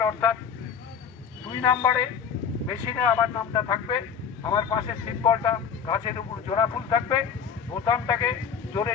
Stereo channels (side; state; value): right; quieter; 7.1 dB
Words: অর্থাৎ 2 নাম্বারে মেশিনে আমার নামটা থাকবে, আমার পাশে সিম্বলটা গাছের উপর জোড়া ফুল থাকবে, বোতামটাকে জোরে